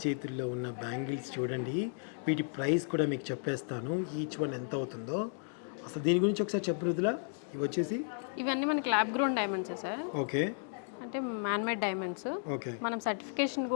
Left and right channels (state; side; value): silent; right; 55 dB below the other